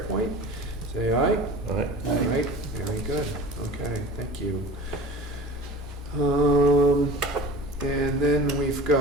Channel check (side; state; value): both; normal; correlation 0.38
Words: Say aye. All right. All right, very good. Okay, thank you. And then we've